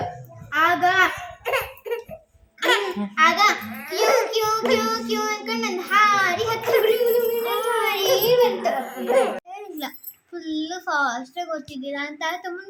ಆಗ ಆಗ ಕ್ಯೂ ಕ್ಯೂ ಕ್ಯೂ ಕ್ಯೂ ಅನ್ಕೊಂಡು ನನ್ನ ಹಾರಿ ಹತ್ತಿ ಬಂತು. ಇಲ್ಲ ಫುಲ್ಲು ಫಾಸ್ಟಾಗಿ ಓದ್ತಿದ್ದೀರಾ ಅಂತ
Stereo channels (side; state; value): both; identical; correlation 1.00